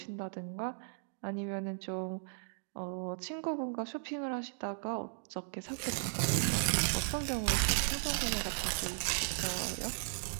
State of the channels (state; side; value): silent; left; digital silence